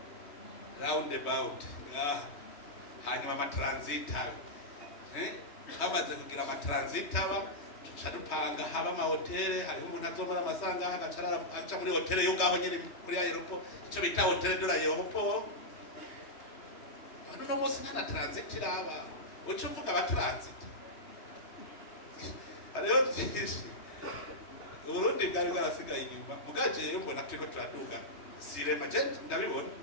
round about hanyuma ama transit hamaze kugira ama transit aba dupanga haba ama hotel hari umuntu azomara amasanga agacarara aca muri hotel yo ngaho nyine kuri aeroport icyo bita hotel de l'aéroport no munsi nta transit iraba uco uvuga aba transit hariho byinshi Burundi bwari bwarasigaye inyuma mugaje rero mbona turiko turaduga sirema je ndabibona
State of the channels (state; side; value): late; right; 3.2 ms